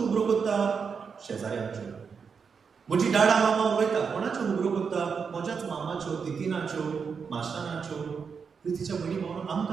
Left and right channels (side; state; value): left; quieter; 5.9 dB